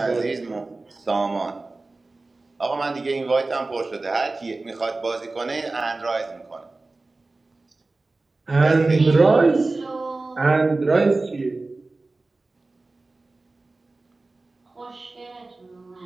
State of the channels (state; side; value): quieter; left; 3.3 dB